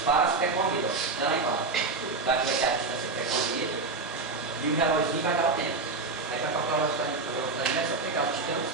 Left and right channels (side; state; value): left; quieter; 3.8 dB